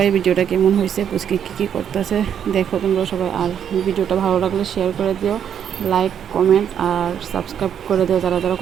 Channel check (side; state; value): left; quieter; 8.8 dB